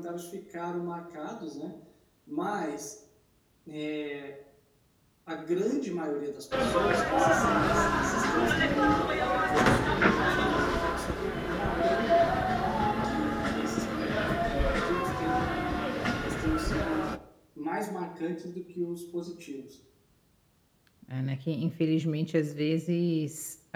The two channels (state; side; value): identical; both; correlation 1.00